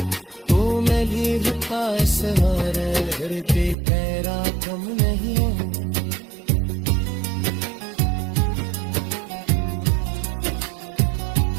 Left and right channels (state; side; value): drops out; left; at 3.8 s